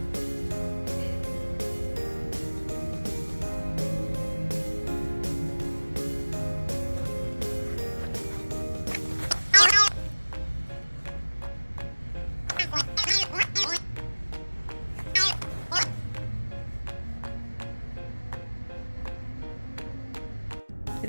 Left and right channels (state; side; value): inverted; both; correlation -1.00